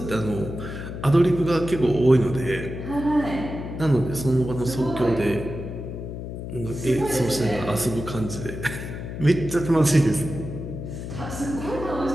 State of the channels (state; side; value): noise; left; hum, 8 dB below the sound